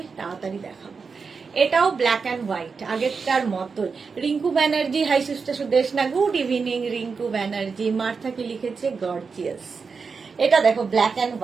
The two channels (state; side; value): quieter; left; 5.1 dB